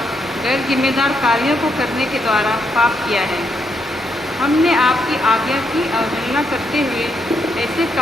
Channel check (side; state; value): both; normal; correlation 0.78